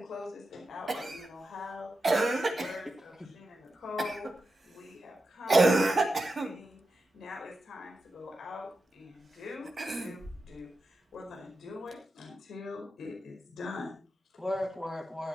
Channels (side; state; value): both; normal; correlation 0.90